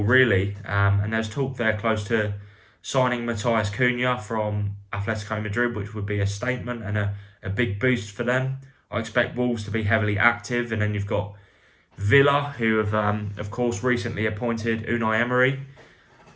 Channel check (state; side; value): identical; both; correlation 1.00